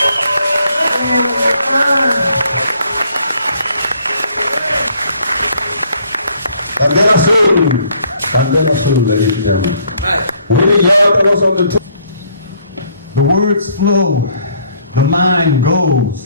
Candela Azul, ladies and gentlemen. Willie Yard was on the tour. The words flow, the mind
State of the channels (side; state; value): both; inverted; correlation -0.65